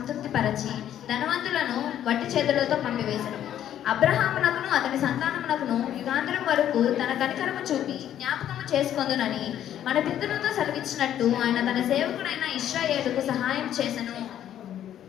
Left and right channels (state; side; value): quieter; right; 10.9 dB